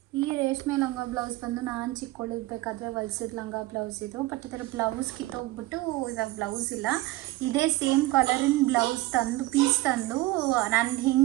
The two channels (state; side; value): quieter; left; 17.9 dB